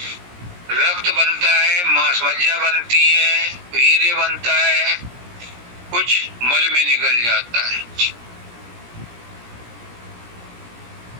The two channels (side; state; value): left; late; 17 ms